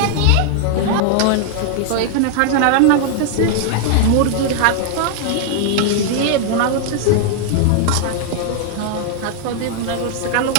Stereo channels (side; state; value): both; different; correlation 0.00